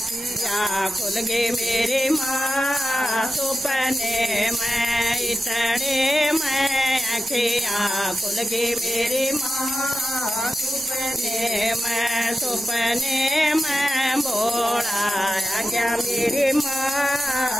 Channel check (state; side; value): normal; both; correlation 0.92